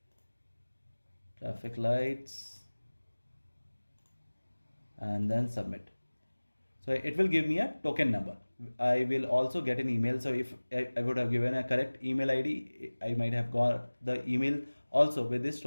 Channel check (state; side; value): inverted; both; correlation -1.00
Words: traffic lights, and then submit. So it will give me a token number. I will also get an email. So if I would have given a correct email ID, I might have got the email also with this